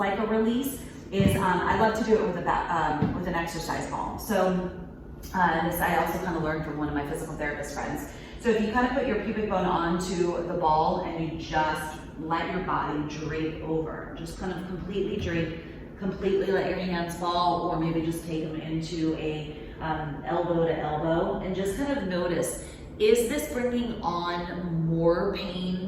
a release is, I love to do it with an exercise ball. So this I also kind of learned from one of my physical therapist friends. So if you kind of put your pubic bone onto the ball and you just let your body drape over, just kind of completely drape, completely let your hands fall, or maybe just take them into a elbow to elbow, and just kind of notice, is this bringing on more pain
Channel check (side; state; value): both; identical; correlation 1.00